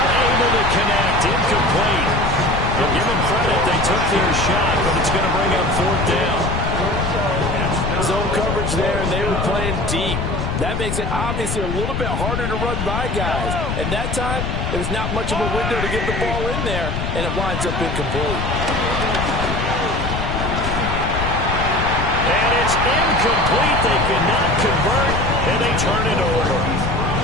to connect. Incomplete. We'll give them credit. They took their shot, but it's going to bring up fourth down. Zone coverage there, and they were playing deep. That makes it obviously a little bit harder to run by guys. And that time, it was not much of a window to get the ball in there, and it winds up incomplete. And it's incomplete. They cannot convert, and they turn it over.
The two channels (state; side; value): noise; left; rumble, 2 dB below the sound